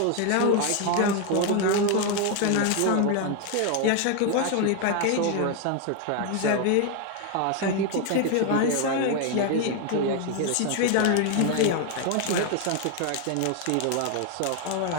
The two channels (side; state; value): both; different; correlation 0.01